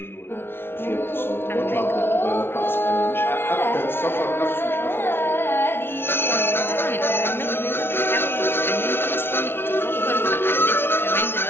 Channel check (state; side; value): late; right; 0.11 ms